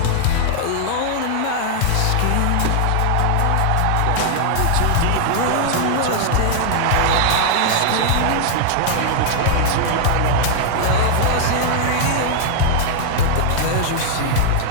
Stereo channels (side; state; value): both; different; correlation -0.01